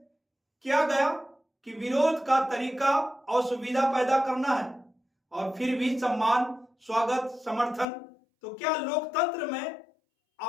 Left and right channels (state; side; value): drops out; right; at 7.9 s